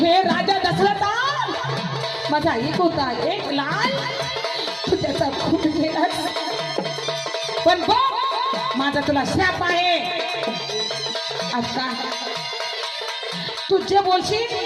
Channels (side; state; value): both; identical; correlation 1.00